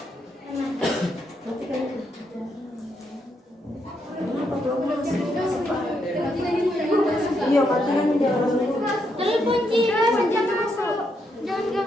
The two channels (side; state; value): both; normal; correlation 0.79